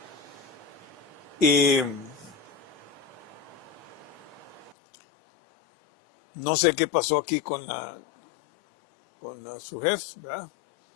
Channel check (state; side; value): drops out; right; at 4.8 s